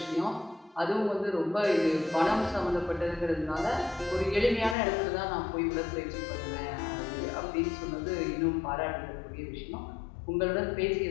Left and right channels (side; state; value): right; drops out; at 4.8 s